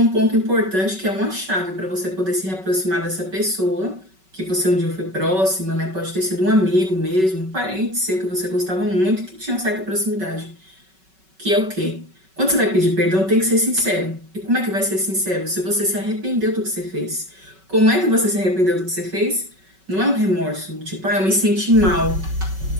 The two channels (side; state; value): left; late; 5.3 ms